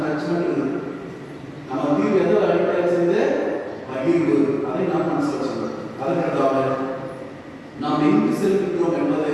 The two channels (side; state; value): both; identical; correlation 1.00